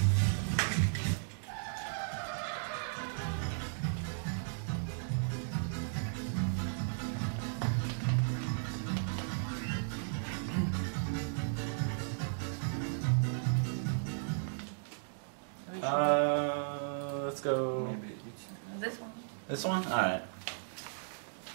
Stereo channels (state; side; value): silent; left; digital silence